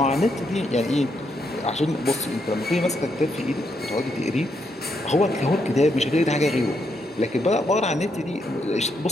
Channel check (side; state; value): both; normal; correlation 0.78